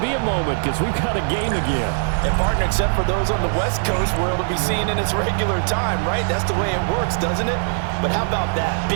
a moment because we've got a game again. And partner, except for those on the West Coast, where it'll be seen in its regular time, right? That's the way it works, doesn't it? But how about that?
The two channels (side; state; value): left; silent; digital silence